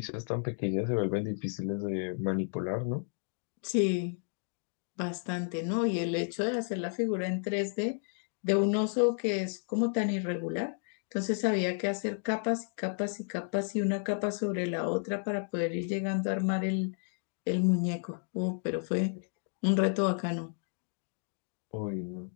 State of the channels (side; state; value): right; silent; 56 dB below the other